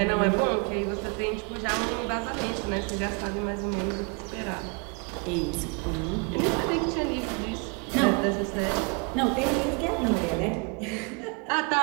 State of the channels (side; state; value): left; quieter; 34.8 dB